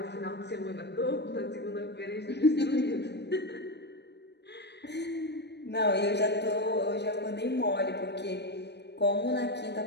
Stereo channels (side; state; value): right; late; 0.50 ms